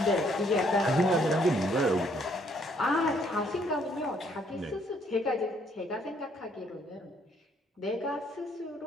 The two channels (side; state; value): both; normal; correlation 0.67